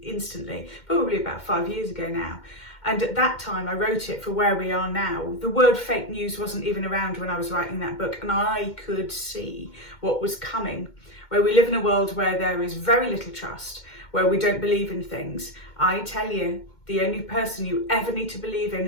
Instantly, probably about 5 years ago now. And at that time, I wrote it for where we are now. The word fake news wasn't even around when I was writing that book, and I could see what was coming, where we live in a world where there is very little trust, where we don't believe in things. I tell you, the only person you ever need to believe in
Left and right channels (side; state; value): right; late; 2.1 ms